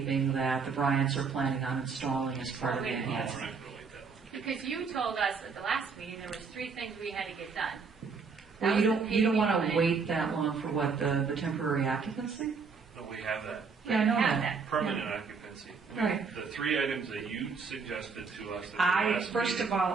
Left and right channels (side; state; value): left; quieter; 5.2 dB